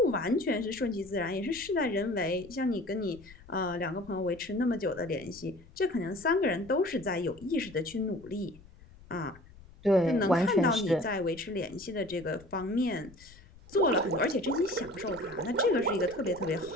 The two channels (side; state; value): left; noise; rumble, 22 dB below the sound